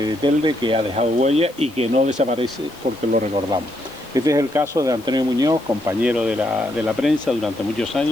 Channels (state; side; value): noise; left; hiss, 25 dB below the sound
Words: de Telde que ha dejado huella y que no desaparece porque lo recordamos. Este es el caso de Antonio Muñoz, compañero de la prensa durante muchos